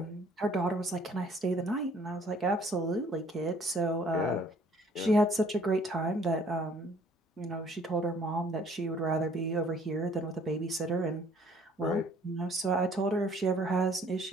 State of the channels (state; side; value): normal; both; correlation 0.58